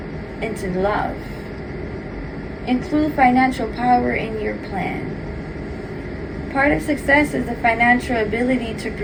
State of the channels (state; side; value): identical; both; correlation 1.00